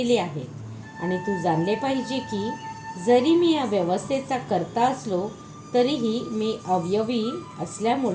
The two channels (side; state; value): both; identical; correlation 1.00